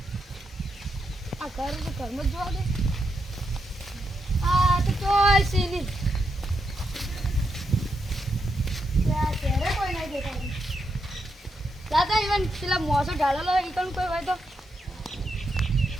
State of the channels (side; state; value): both; normal; correlation 0.83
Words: આ ઘરમાં જ જોવા દે. આ તો ચોય સીની ત્યારે કોઈ નહીં દેખાતું. દાદા ઇવન પેલા મોસો ઢાળેલો હોય ઈ કોઈ હોય તો